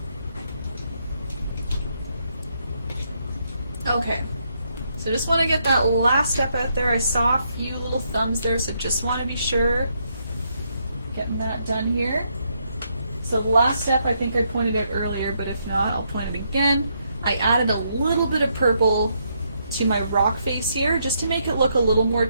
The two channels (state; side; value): inverted; both; correlation -0.76